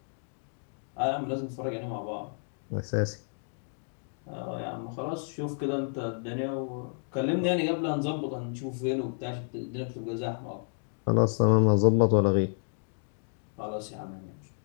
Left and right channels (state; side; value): silent; right; 57 dB below the other